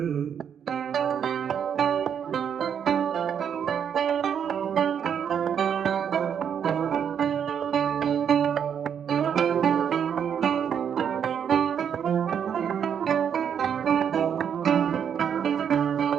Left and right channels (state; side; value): quieter; left; 8.1 dB